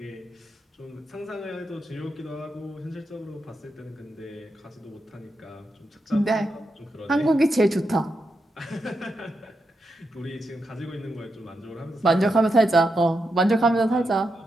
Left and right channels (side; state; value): both; normal; correlation 0.85